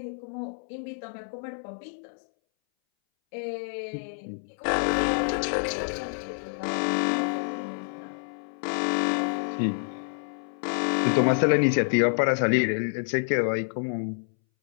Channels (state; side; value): silent; right; 60 dB below the other